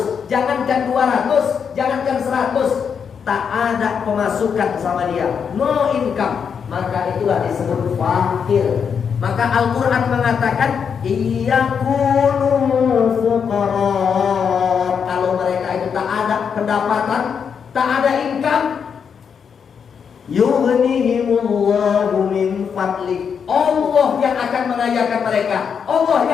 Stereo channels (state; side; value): quieter; right; 6.8 dB